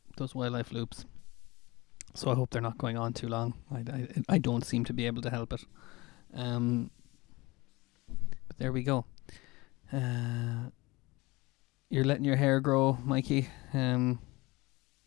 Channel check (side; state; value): right; quieter; 22.5 dB